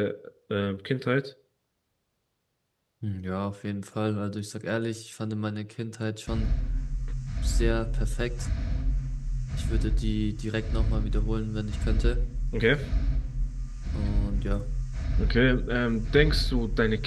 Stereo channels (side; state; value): both; identical; correlation 1.00